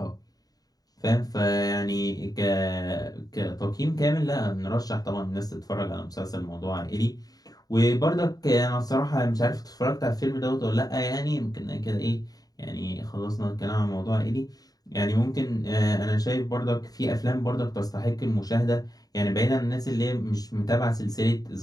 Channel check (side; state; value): right; late; 0.18 ms